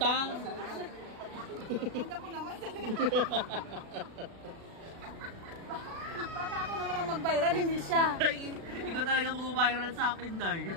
Ganda ko naman. Baka ako naman ang mag-viral, hindi siya. Ay, ikaw talaga mag-viral sa akin, Day.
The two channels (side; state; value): left; late; 36 ms